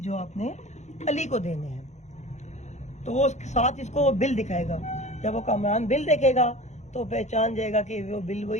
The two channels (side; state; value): right; late; 0.33 ms